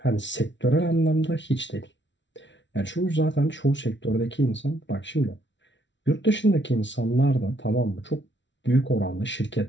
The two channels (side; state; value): right; late; 0.53 ms